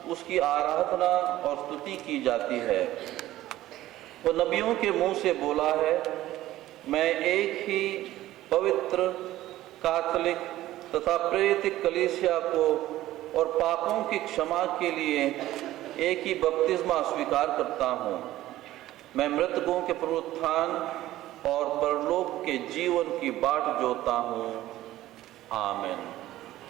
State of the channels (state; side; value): quieter; left; 15.1 dB